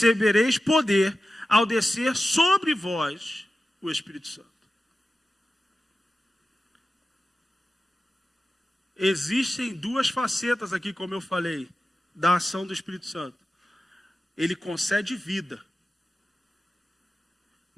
poder ao descer sobre vós o Espírito Santo. Existem 2 facetas aqui, como eu falei, da ação do Espírito Santo. Ele concede vida,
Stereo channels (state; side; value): normal; both; correlation 0.93